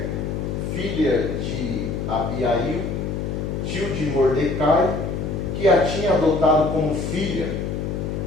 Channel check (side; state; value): left; noise; hum, 3 dB below the sound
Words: filha de Abiail, tio de Mordecai, que a tinha adotado como filha,